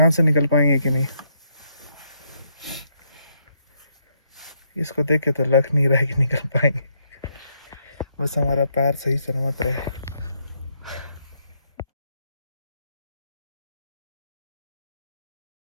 से निकल पाएंगे कि नहीं। इसको देख के तो लग नहीं रहा है कि निकल पाएंगे, बस हमारा पैर सही सलामत रहे।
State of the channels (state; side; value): inverted; both; correlation -0.75